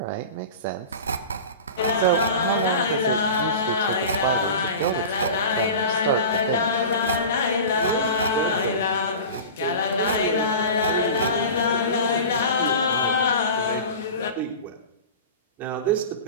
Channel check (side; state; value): both; inverted; correlation -0.34